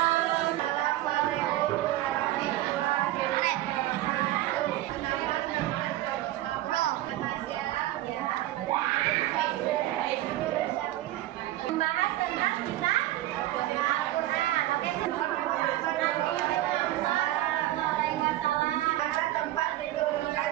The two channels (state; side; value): quieter; left; 15.2 dB